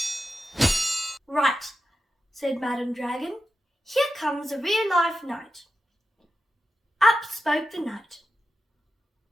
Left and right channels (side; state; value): both; normal; correlation 0.90